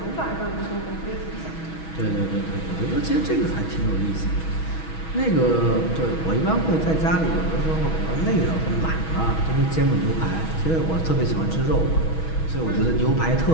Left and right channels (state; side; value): late; right; 6.2 ms